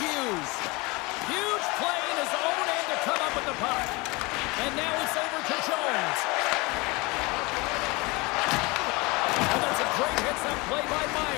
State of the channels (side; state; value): right; quieter; 25.2 dB